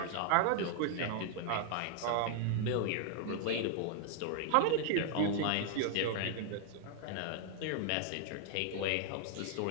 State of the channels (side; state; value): both; different; correlation 0.00